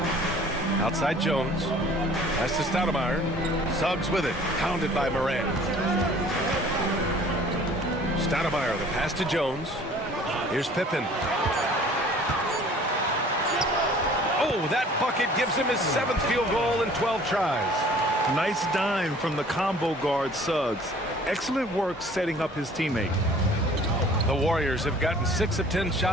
Outside Jones. Pass to Stoudemire. Suggs with it. Pounded by Morant. Stoudemire, the pass to Jones. Here's Pippen. Oh, that bucket gives him his 7th field goal in 12 tries. Nice dime from the combo guard Suggs. Excellent work setting up his teammate. The Warriors have gotten 6 of 10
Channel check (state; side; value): normal; both; correlation 0.51